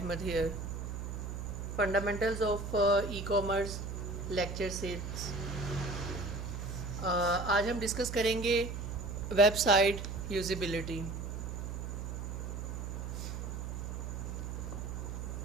here. Fundamentals of e-commerce lecture series. आज हम discuss करेंगे website usability.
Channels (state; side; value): noise; right; hum, 5 dB below the sound